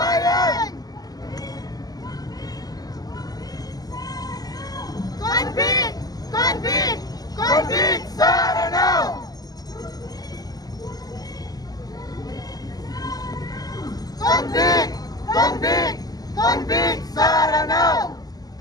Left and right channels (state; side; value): late; right; 0.18 ms